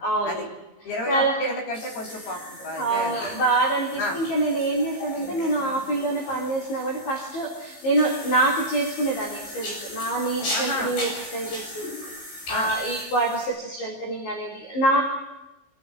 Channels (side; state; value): right; late; 19 ms